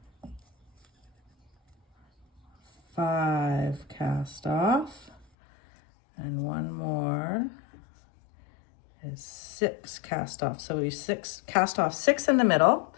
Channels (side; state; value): right; drops out; at 5.2 s